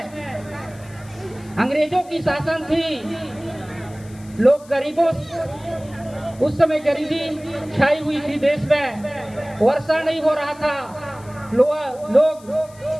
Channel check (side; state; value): left; noise; hiss, 24 dB below the sound